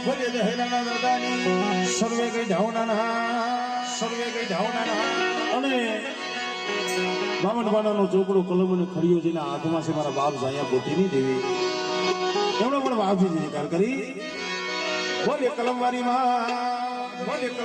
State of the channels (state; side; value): identical; both; correlation 1.00